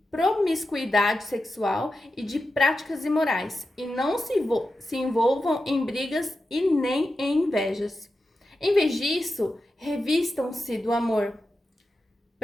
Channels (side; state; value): both; normal; correlation 0.90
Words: promiscuidade sexual e de práticas imorais. E não se envolvam em brigas e nem em invejas. Em vez disso, revistam-se do amor.